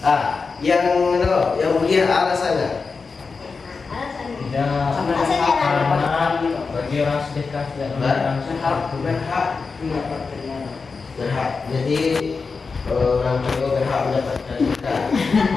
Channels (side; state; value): right; quieter; 4.7 dB